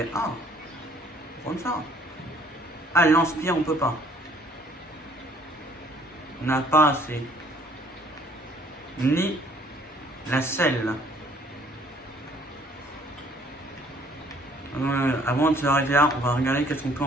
Ah, on va prendre ça. Ah, le lance-pierre, on peut pas. On n'a pas assez. Ni la selle. Avant de s'arrêter là, on va regarder qu'est-ce qu'on peut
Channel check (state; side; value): normal; both; correlation 0.59